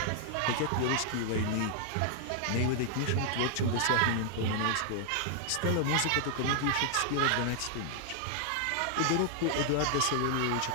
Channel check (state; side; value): different; both; correlation 0.00